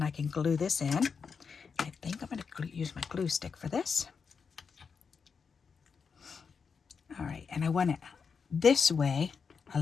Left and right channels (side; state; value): right; quieter; 5.8 dB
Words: I can glue this in. I think I'm going to use my glue stick for this. All right, and I want it this way a